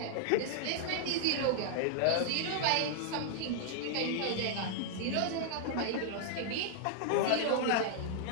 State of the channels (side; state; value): both; different; correlation -0.01